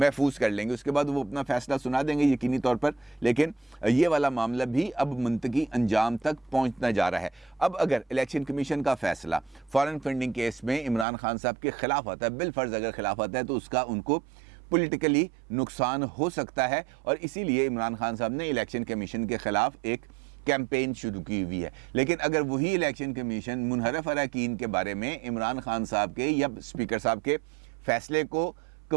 कर लेंगे। उसके बाद वो अपना फ़ैसला सुना देंगे यकीनी तौर पर। लेकिन ये वाला मामला भी अब मंतकी अंजाम तक पहुंचना जा रहा है। अब अगर इलेक्शन कमीशन का फ़ैसला फॉरेन फंडिंग केस में इमरान खान साहब के ख़िलाफ़ आता है, बिलफर्ज अगर ख़िलाफ़ आता है, तो उसका उनको पॉलिटिकली नुकसान हो सकता है, और इसीलिए इमरान खान साहब ने इलेक्शन कमीशन के ख़िलाफ़ एक कैंपेन शुरू की हुई है। लेकिन अगर वही इलेक्शन कमीशन मुनहरफ अरकान के बारे में इमरान खान साहब के या स्पीकर साहब के फ़ैसले को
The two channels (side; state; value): left; drops out; at 11.1 s